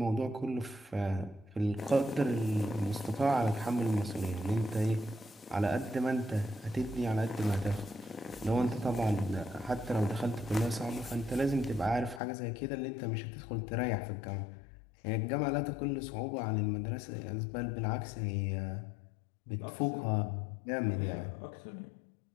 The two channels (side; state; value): right; drops out; at 12.2 s